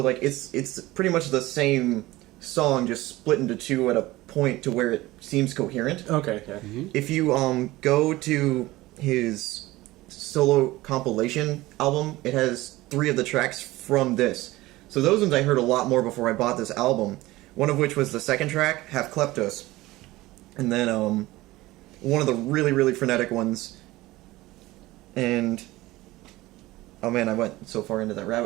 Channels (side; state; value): left; quieter; 18.6 dB